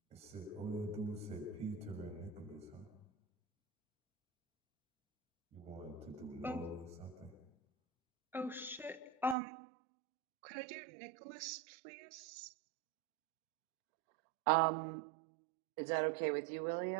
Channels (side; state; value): left; drops out; at 9.3 s